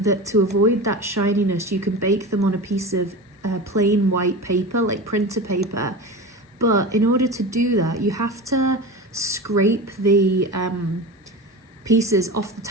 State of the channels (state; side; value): normal; both; correlation 0.29